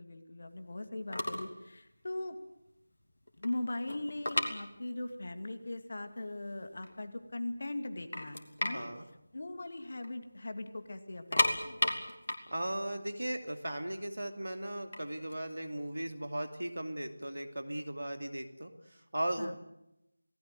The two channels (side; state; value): both; inverted; correlation -0.97